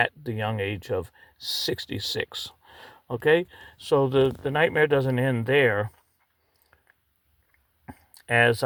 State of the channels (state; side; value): identical; both; correlation 1.00